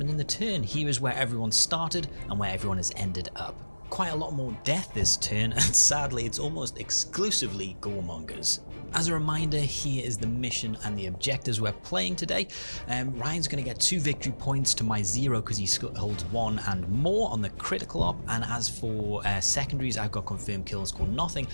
in the turn. Here is where everyone started and where everyone has ended up. Quite a lot more death this turn, and sadly it's almost exclusively Goremongers. As a reminder, here is the mission and the objectives we're playing today. Ryan's going to get 2 victory points to my 0 because he holds 1 and more on the critical op, and as for secondaries, I've got confirmed kills score nothing.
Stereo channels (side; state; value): both; inverted; correlation -1.00